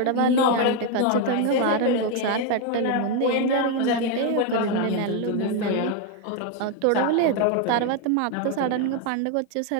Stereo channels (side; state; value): both; different; correlation 0.01